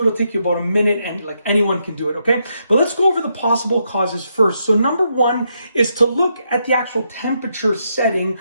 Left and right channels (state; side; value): inverted; both; correlation -0.80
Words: take you about a minute, and like anyone can do it, okay? But let's go over the possible causes first. So number 1 is to look at the actual temperature setting